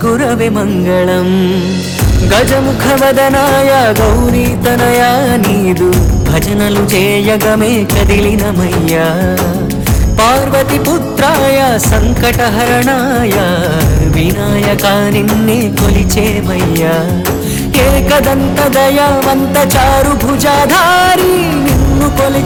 ಮಂಗಳಂ గజముఖవదనాయ గౌరీతనయ నీదు భజనలు చేయగమే కదిలినమయ్యా పార్వతి పుత్రాయ సంకటహరణాయ వినాయక నిన్నే కొలిచేమయ్యా ఏకదంత దయావంత చారు భుజాధారి నిన్ను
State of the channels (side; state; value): both; identical; correlation 1.00